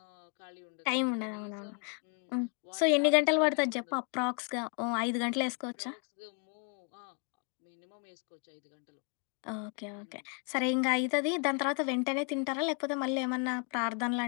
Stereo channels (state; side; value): quieter; right; 39.3 dB